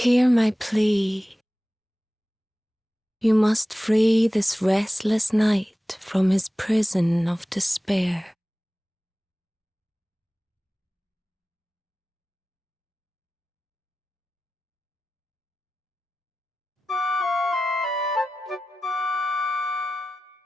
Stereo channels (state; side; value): normal; both; correlation 0.95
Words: my plea. You must free this restless knight from his prison of despair.